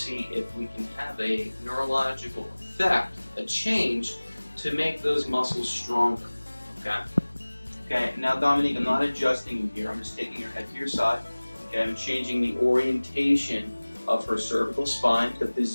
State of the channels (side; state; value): both; inverted; correlation -1.00